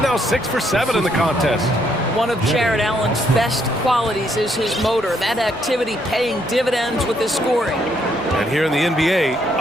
6 for 7 in the contest. One of Jared Allen's best qualities is his motor. That activity paying dividends with his scoring. And here in the NBA,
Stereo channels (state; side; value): normal; both; correlation 0.72